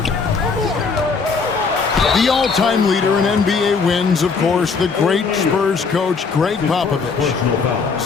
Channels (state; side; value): quieter; right; 4.9 dB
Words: The all-time leader in NBA wins, of course, the great Spurs coach, Greg Popovich.